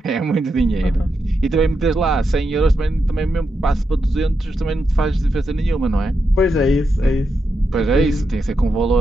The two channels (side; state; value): both; normal; correlation 0.85